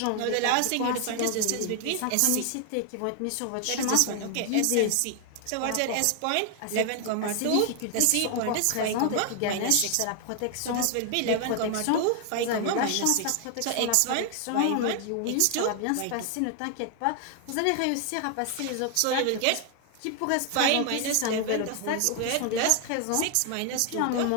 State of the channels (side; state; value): both; different; correlation 0.00